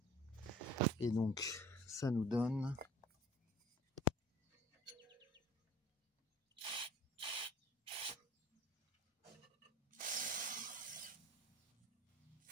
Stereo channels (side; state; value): both; normal; correlation 0.47